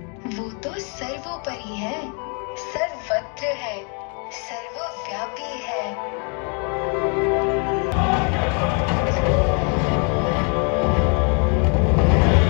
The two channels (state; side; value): quieter; right; 37.7 dB